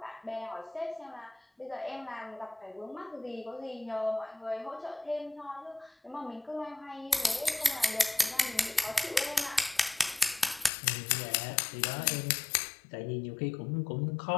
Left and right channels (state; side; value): drops out; right; at 10.7 s